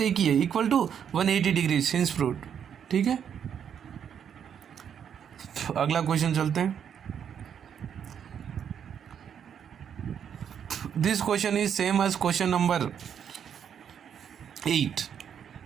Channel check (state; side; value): quieter; left; 8.3 dB